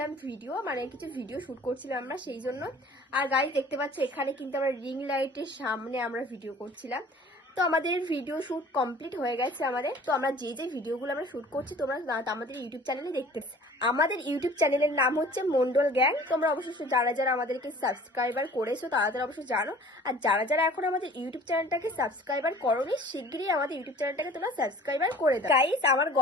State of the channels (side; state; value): both; normal; correlation 0.48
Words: ভিডিও, মানে কিছু ভিডিও শুট করছিলাম আমরা সেই জন্য। আর গাইস দেখতে পাচ্ছ এখানে কিন্তু আমরা রিং লাইটের সামনে আমরা ভিডিও করছিলাম। তো আমাদের ভিডিও শুট কমপ্লিট হয়ে গেছে আমাদের। তো আমরা যে যে ভিডিওগুলো আমরা শুট করছি তোমরা আমাদের ইউটিউব চ্যানেলে দেখতে। আমাদের ইউটিউব চ্যানেলের নাম হচ্ছে মন্ডল গ্যাং। তোমরা অবশ্যই যারা যারা আমাদেরকে সাবস্ক্রাইবার করেছো তারা তারা অবশ্যই জানো। আর যারা যারা এখন আমাদের ইউটিউব চ্যানেলটাকে সাবস্ক্রাইবার করোনি, শিগগিরই আমাদের ইউটিউব চ্যানেলটাকে তোমরা সাবস্ক্রাইবার করে দাও। গাইস, আমার